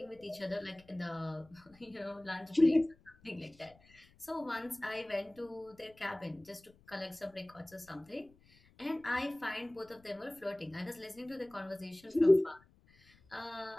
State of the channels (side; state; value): left; noise; rumble, 28 dB below the sound